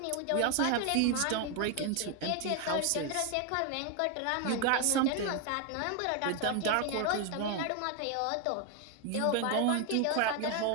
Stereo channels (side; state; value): both; different; correlation 0.01